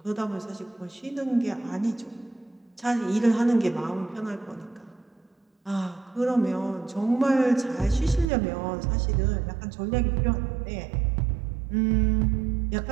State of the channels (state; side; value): drops out; left; at 8.2 s